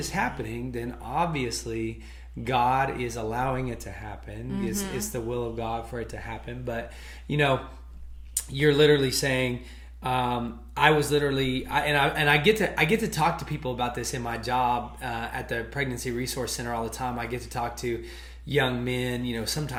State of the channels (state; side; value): identical; both; correlation 1.00